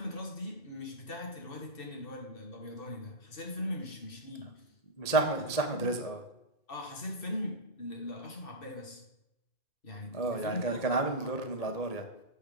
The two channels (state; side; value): late; right; 1.8 ms